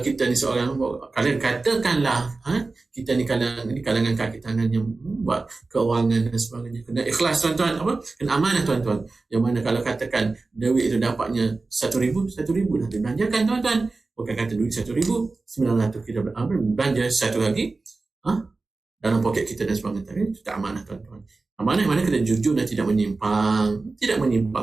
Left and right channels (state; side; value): quieter; left; 3.6 dB